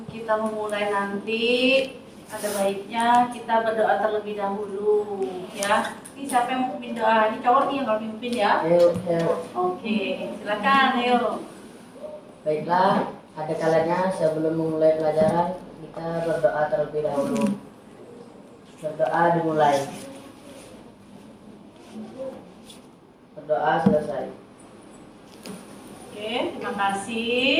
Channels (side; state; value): both; identical; correlation 1.00